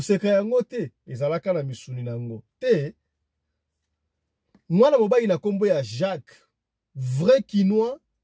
yango te ezalaka na misuni nango. Te mwana mobali na kombo ya Jacques, vrai Quinois,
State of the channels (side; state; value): both; identical; correlation 1.00